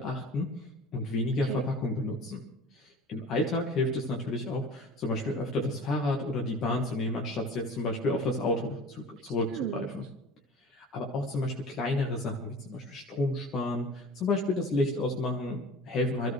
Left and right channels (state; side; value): normal; both; correlation 0.40